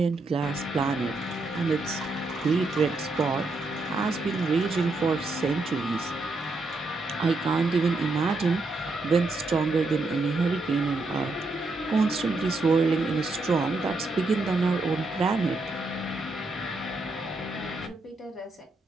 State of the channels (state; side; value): quieter; left; 3.2 dB